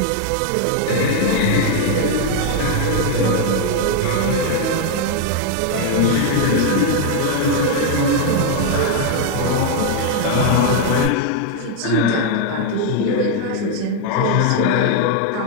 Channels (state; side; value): different; both; correlation 0.00